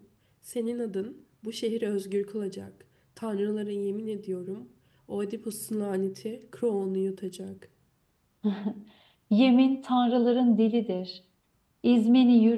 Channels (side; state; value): both; identical; correlation 1.00